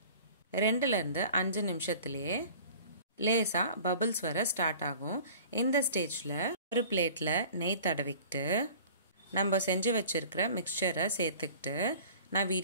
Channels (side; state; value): both; inverted; correlation -0.45